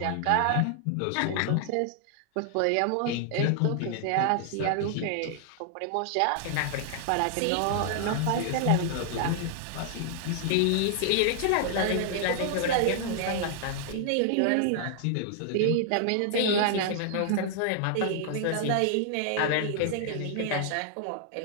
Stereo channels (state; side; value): different; both; correlation -0.01